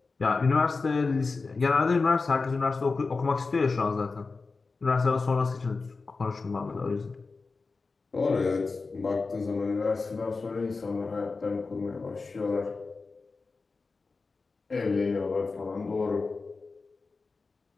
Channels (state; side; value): quieter; right; 4.1 dB